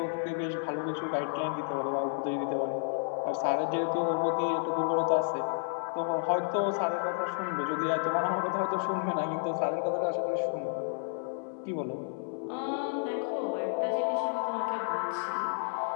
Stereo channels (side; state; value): right; silent; 57 dB below the other